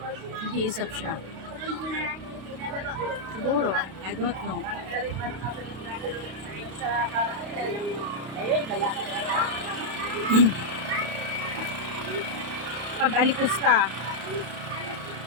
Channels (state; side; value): late; left; 32 ms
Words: Nag-iisap siya. Siguro, I don't know. Pag-alipusta,